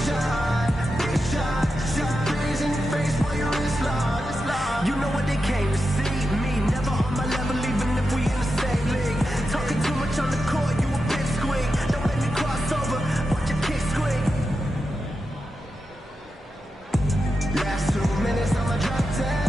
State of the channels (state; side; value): normal; both; correlation 0.89